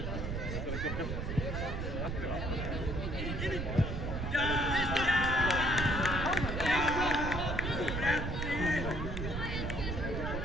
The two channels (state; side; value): noise; right; rumble, 3 dB below the sound